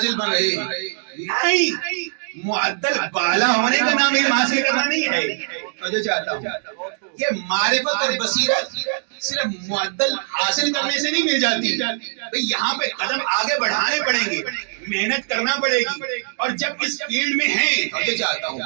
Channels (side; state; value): left; silent; digital silence